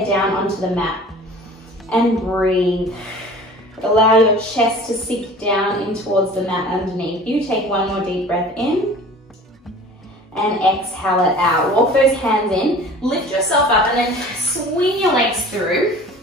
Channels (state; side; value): normal; both; correlation 0.43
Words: down onto the mat and breathe. Allow your chest to sink down in towards the mat underneath you. Take one more deep breath in and exhale it out. Walk those hands in, lift yourself up, and then swing your legs through.